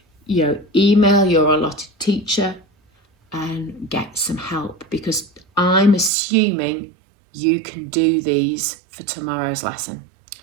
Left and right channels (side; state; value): left; drops out; at 6.1 s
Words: you know, email your allotted teacher and get some help, because I'm assuming you can do these for tomorrow's lesson,